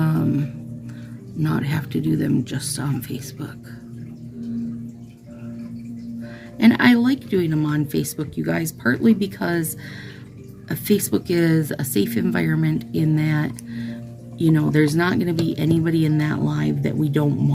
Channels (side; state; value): both; identical; correlation 1.00